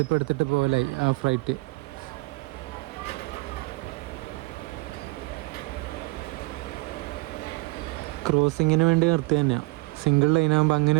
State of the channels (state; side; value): quieter; left; 24.3 dB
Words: എടുത്തിട്ട് പോകലായി ആ ഫ്രൈറ്റ്. ക്രോസിങ്ങിന് വേണ്ടി നിർത്തി തന്നെയാണ്. സിംഗിൾ ലൈനാകുമ്പോൾ അങ്ങനെ